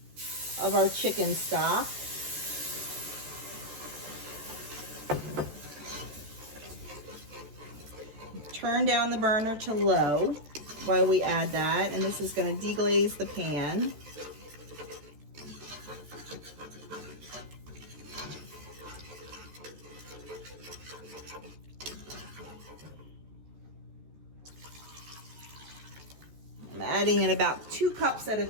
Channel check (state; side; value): late; left; 14 ms